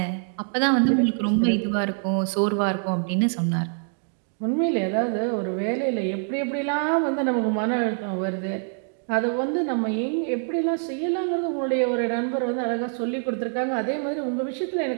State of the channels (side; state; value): left; silent; 56 dB below the other